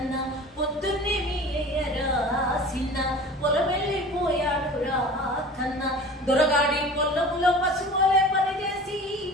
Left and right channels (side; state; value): both; normal; correlation 0.40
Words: పొద్దున్నే మీయరా సిన్న పొలమెళ్ళిపోయాడు రా కన్నా దొరగాడి పొల్లములో పసుపోలే పనిచేసి